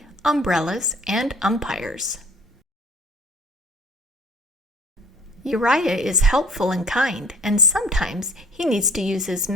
umbrellas, and umpires. Uriah is helpful and kind, and sometimes he needs to use his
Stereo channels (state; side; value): normal; both; correlation 0.51